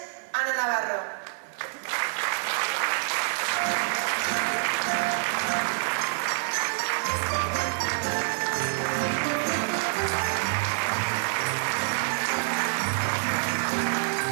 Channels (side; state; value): left; silent; digital silence